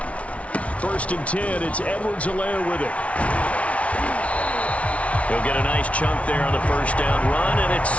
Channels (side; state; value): right; late; 0.064 ms